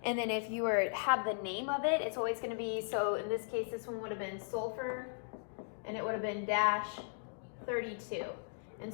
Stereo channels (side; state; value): right; silent; digital silence